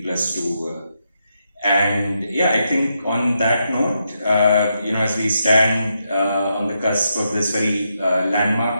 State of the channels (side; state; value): both; inverted; correlation -0.83